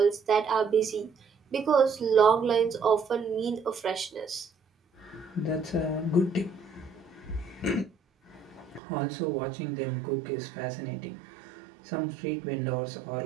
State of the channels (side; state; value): left; drops out; at 8.8 s